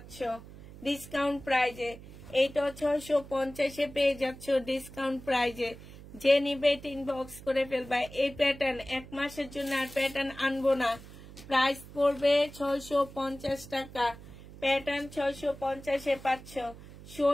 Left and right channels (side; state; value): right; noise; hum, 17 dB below the sound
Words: ডিসকাউন্ট প্রাইজে। এইটাও 650-এ পেয়ে যাচ্ছ ডিসকাউন্ট প্রাইজে। যে নিবে ইনবক্স করে ফেলবা। এই প্যাটার্ন 1 মাসের জন্য আর প্যাটার্ন আনবো না। প্রাইস পড়বে 650 টাকা। প্যাটার্ন 650-এ পাচ্ছ।